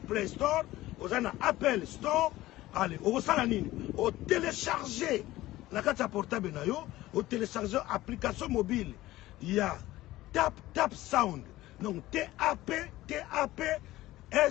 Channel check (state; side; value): quieter; right; 16.7 dB